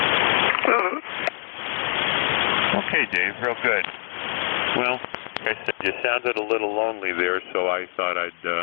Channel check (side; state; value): right; silent; digital silence